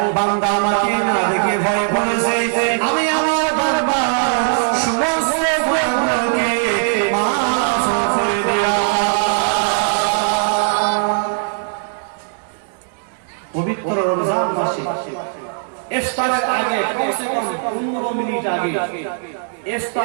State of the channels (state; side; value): silent; left; digital silence